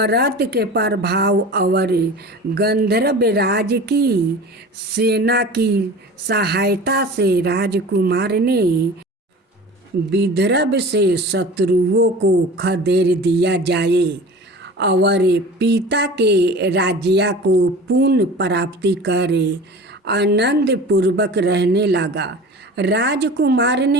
के प्रभाव और गंधर्व राज की सेना की सहायता से राजकुमार ने विदर्भ से शत्रुओं को खदेड़ दिया जाए और पिता के राज्य को पुण्य प्राप्ति करे आनंद पूर्वक रहने लगा। राजकुमार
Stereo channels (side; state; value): both; normal; correlation 0.38